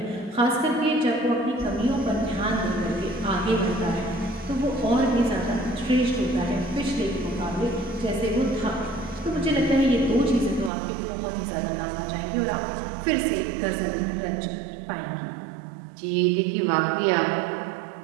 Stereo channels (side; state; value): left; drops out; at 10.7 s